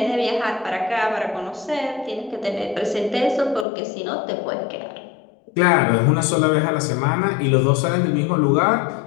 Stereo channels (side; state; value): right; drops out; at 3.7 s